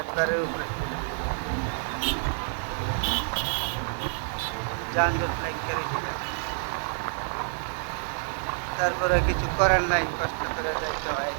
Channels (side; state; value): left; silent; 59 dB below the other